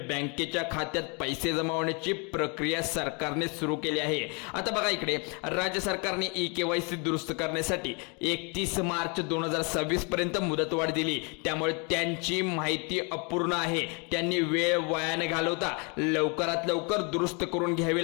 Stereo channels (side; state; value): right; quieter; 33.1 dB